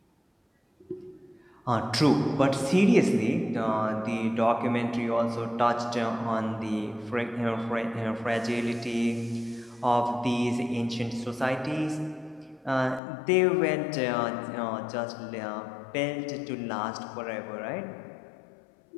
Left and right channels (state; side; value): drops out; right; at 13.0 s